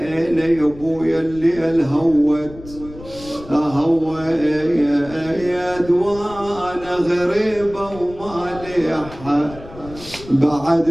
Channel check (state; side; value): noise; left; rumble, 17 dB below the sound